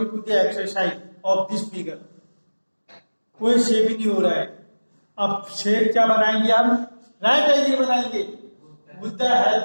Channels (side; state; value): both; inverted; correlation -1.00